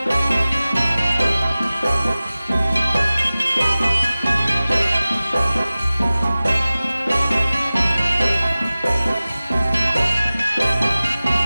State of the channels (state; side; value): inverted; both; correlation -0.97